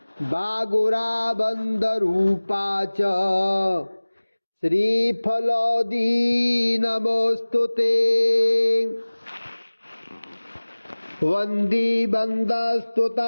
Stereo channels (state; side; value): inverted; both; correlation -1.00